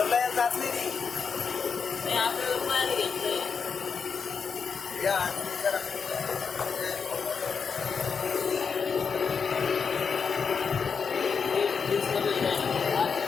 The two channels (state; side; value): quieter; right; 5.9 dB